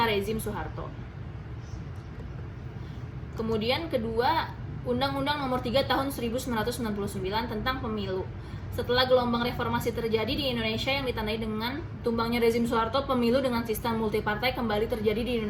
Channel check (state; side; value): identical; both; correlation 1.00